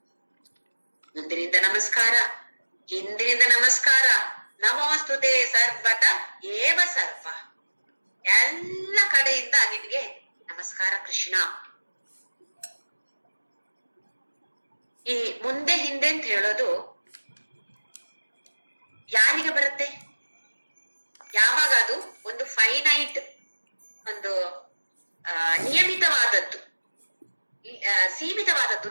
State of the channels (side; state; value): both; inverted; correlation -1.00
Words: ಮುಂದಿನಿಂದ ನಮಸ್ಕಾರ, ಹಿಂದಿನಿಂದ ನಮಸ್ಕಾರ. ನಮೋಸ್ತುತೆ ಸರ್ವತ ಏವ ಸರ್ವ. ಎಲ್ಲ ಕಡೆಯಿಂದ ನಿನ್ಗೆ ನಮಸ್ಕಾರ ಕೃಷ್ಣ. ಈ ಮುಂದೆ ಹಿಂದೆ ಅಂತ ಹೇಳೋದು ಯಾರಿಗೆ ಬರುತ್ತೆ? ಯಾವಾಗ ಅದು ಒಂದು ಫೈನೈಟ್, ಒಂದು ನಿಯಮಿತವಾದದ್ದು, ಸೀಮಿತವಾದದ್ದು